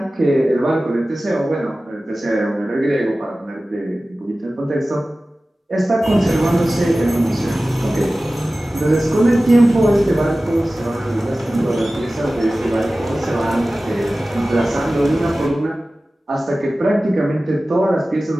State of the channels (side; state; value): both; normal; correlation 0.96